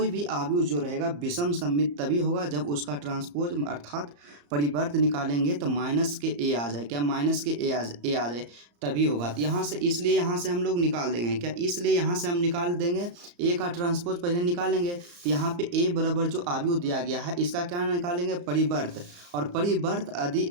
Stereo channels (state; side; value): late; left; 34 ms